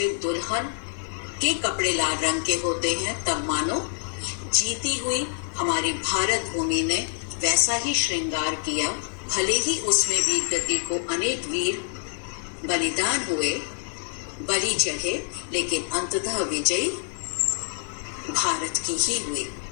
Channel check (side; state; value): right; silent; 57 dB below the other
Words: दुल्हन के कपड़े लाल रंग के होते हैं, तब मानो जीती हुई हमारी भारत भूमि ने वैसा ही श्रृंगार किया। भले ही उसमें वीर गति को अनेक वीर बलिदान हुए, बलि चढ़े, लेकिन अंततः विजयी भारत की ही हुई।